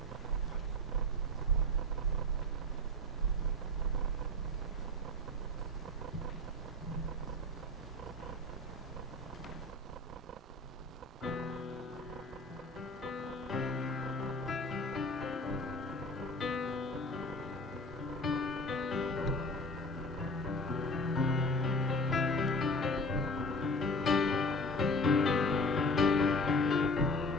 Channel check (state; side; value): normal; both; correlation 0.37